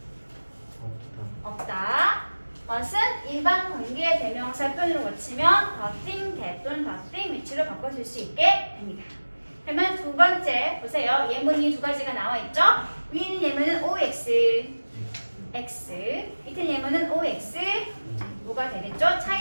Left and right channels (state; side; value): inverted; both; correlation -1.00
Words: 없다. what은 일반 관계대명사 표현으로 고치면 the thing, that 또는 the thing 위치로 바꿔 쓸 수 있게 됩니다. 그러면 두 번째 보세요. 예문이 두 가지가 나와 있죠? 위에 있는 예문은 OX, X. 밑에 예문은 OX, 뭐가 되겠죠?